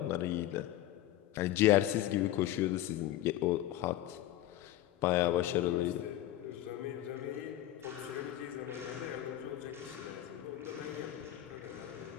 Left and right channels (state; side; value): quieter; right; 13.9 dB